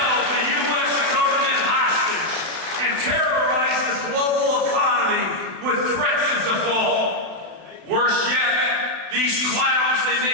the U.S. government hostage and terrorized the global economy with threats of default. Worse yet, these clowns, they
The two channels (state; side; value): late; left; 32 ms